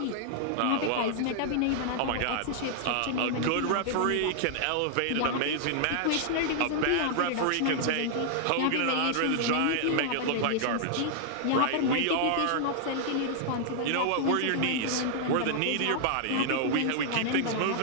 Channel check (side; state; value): both; different; correlation 0.00